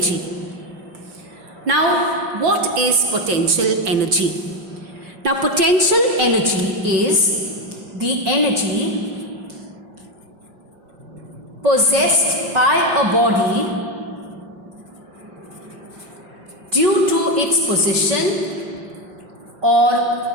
Now, what is potential energy? Now, potential energy is the energy possessed by a body due to its position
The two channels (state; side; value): late; left; 5.3 ms